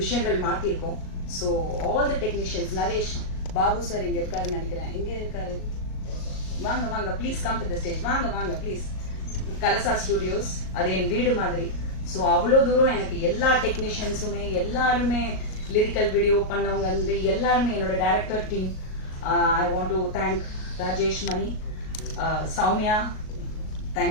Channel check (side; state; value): right; late; 38 ms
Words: மாத்திருக்கோம். So all the technicians, Naresh Babu sir இங்க இருக்காருன்னு நினைக்கிறேன். எங்க இருக்காரு? வாங்க வாங்க please come to the stage. வாங்க வாங்க ப்ளீஸ். கலசா ஸ்டுடியோஸ் அது என் வீடு மாதிரி. ஸோ அவ்வளோ தூரம் எனக்கு எல்லா டெக்னீஷியன்ஸுமே எல்லாருமே லிரிக்கல் வீடியோ பண்ணவங்க வந்து எல்லாருமே என்னோட director team. I want to thank Rajesh Mani, Soumya,